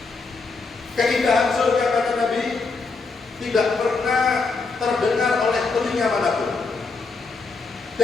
Keindahan surga, kata Nabi, tidak pernah terdengar oleh telinga manapun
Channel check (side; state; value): right; quieter; 4.2 dB